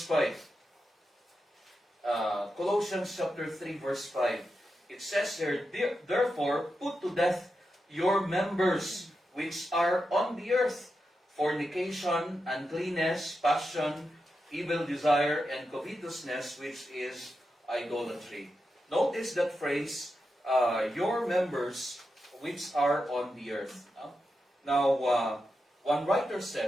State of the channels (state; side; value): normal; both; correlation 0.88